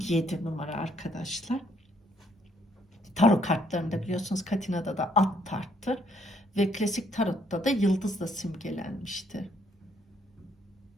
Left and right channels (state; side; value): normal; both; correlation 0.68